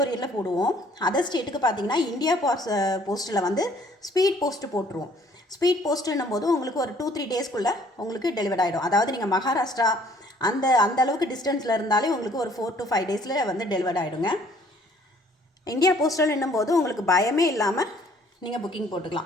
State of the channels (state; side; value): normal; both; correlation 0.59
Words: போடுவோம். அதர் ஸ்டேட்டுக்கு பார்த்தீங்கன்னா இந்தியா போஸ்ட்டில் வந்து ஸ்பீட் போஸ்ட்டு போட்டுருவோம். ஸ்பீட் போஸ்ட்டுன்னும் போது உங்களுக்கு ஒரு 2-3 டேஸ்க்குள்ளே உங்களுக்கு டெலிவரி ஆகிடும். அதாவது நீங்கள் மகாராஷ்டிரா அந்த அளவுக்கு டிஸ்டன்ஸில் இருந்தாலே உங்களுக்கு ஒரு 4 to 5 டேஸில் வந்து டெலிவரி ஆகிடுங்க. இந்தியா போஸ்டல்ன்னும் போது உங்களுக்கு பயமே இல்லாமல் நீங்கள் புக்கிங்